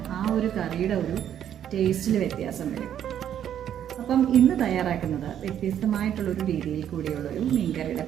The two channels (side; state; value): left; quieter; 10.0 dB